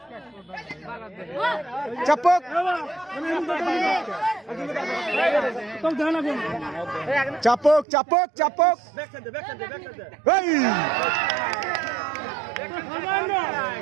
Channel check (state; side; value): drops out; left; at 7.9 s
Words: চাপক চাপক চাপক চাপক